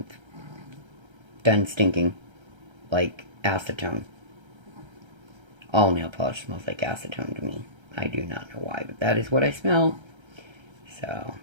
done stinking. Like acetone. All nail polish smells like acetone to me. I do not know why, but that is what I smell. So,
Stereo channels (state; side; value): late; left; 1.3 ms